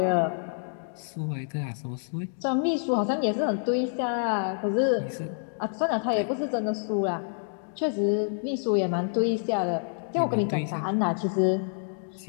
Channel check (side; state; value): right; silent; digital silence